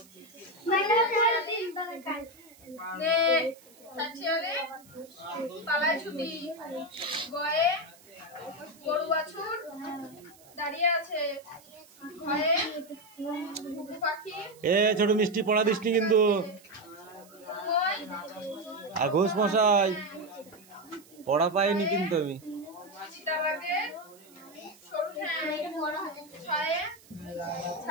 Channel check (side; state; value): right; noise; hiss, 25 dB below the sound